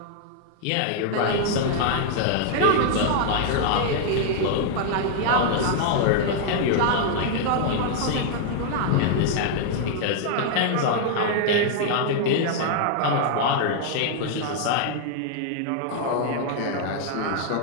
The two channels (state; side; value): different; both; correlation 0.00